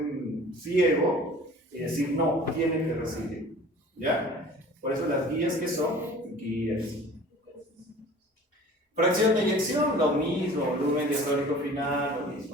ciego y decir, no, tiene que recibir. ¿Ya? Por eso las guías, ¿qué son? Guías. Fracción de eyección, lo mismo, volumen diastólico final, lo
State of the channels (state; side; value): normal; both; correlation 0.45